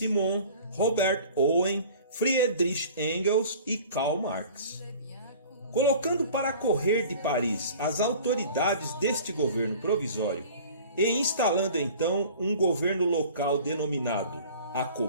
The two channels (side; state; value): both; inverted; correlation -0.45